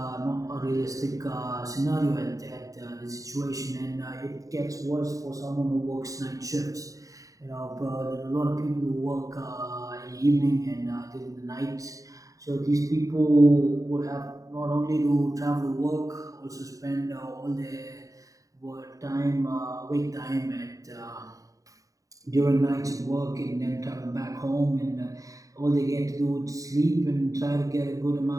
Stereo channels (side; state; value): left; late; 0.16 ms